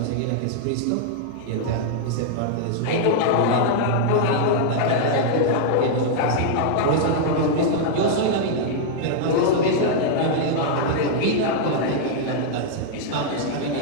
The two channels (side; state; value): both; different; correlation -0.01